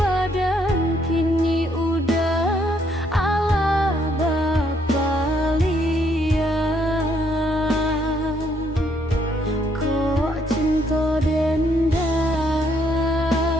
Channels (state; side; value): normal; both; correlation 0.70